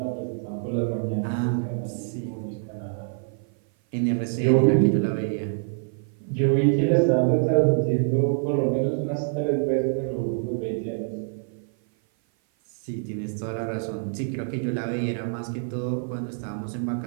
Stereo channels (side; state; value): left; silent; 55 dB below the other